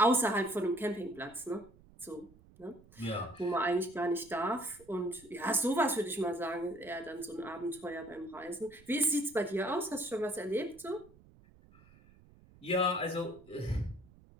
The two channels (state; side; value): noise; right; rumble, 25 dB below the sound